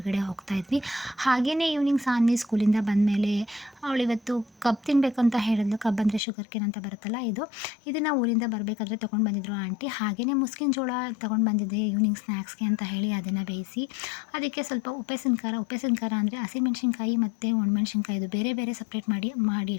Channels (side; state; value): right; drops out; at 6.2 s